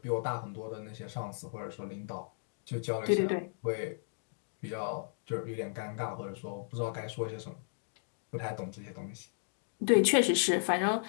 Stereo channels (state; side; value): silent; right; digital silence